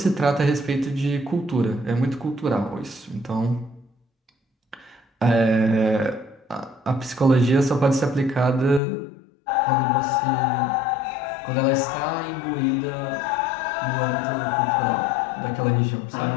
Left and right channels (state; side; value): drops out; right; at 8.8 s